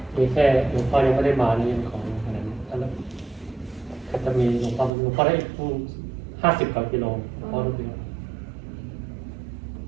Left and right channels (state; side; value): drops out; left; at 4.9 s